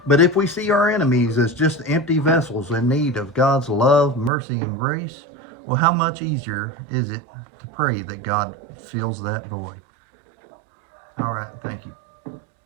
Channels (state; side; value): drops out; left; at 4.3 s